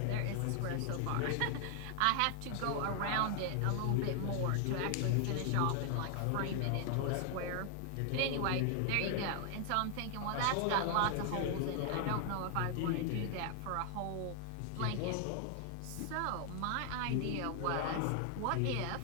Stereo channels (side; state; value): both; different; correlation 0.00